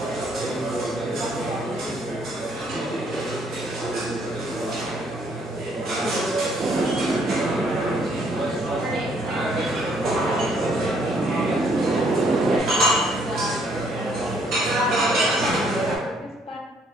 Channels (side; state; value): both; normal; correlation 0.67